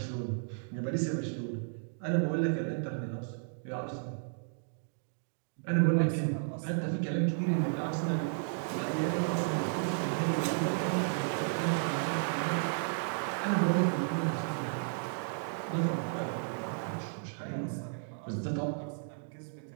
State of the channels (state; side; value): silent; left; digital silence